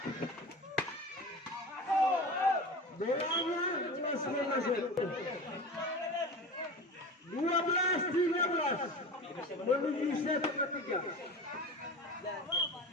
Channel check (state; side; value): normal; both; correlation 0.32